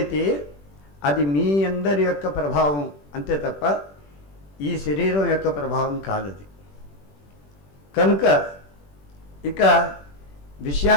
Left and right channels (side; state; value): right; late; 21 ms